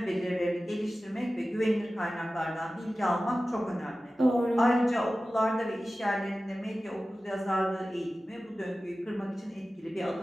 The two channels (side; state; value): both; normal; correlation 0.95